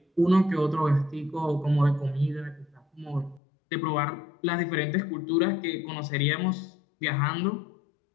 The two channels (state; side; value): drops out; right; at 3.4 s